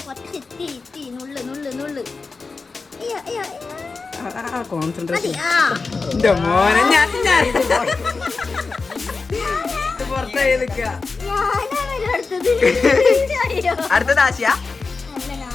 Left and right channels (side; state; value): right; quieter; 4.3 dB